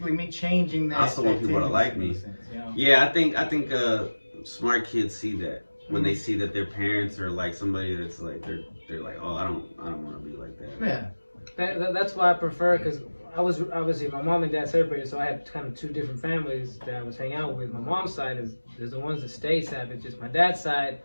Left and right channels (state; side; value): inverted; both; correlation -1.00